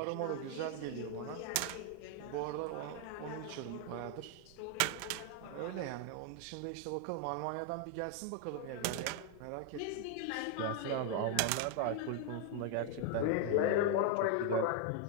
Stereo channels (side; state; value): both; different; correlation 0.00